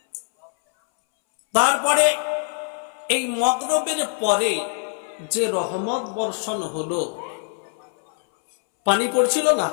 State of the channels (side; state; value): right; silent; 63 dB below the other